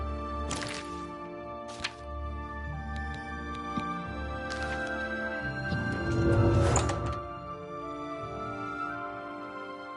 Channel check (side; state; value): both; identical; correlation 1.00